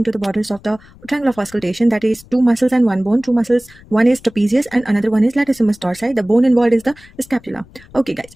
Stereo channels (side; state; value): left; noise; rumble, 24 dB below the sound